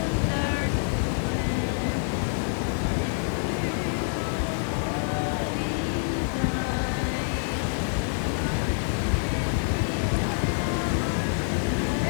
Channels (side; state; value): right; silent; 60 dB below the other